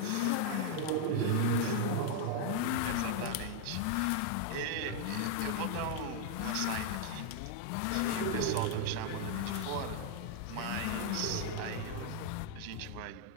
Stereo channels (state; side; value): different; both; correlation 0.00